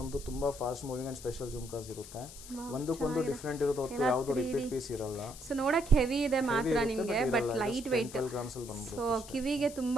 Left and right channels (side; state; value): left; noise; hiss, 15 dB below the sound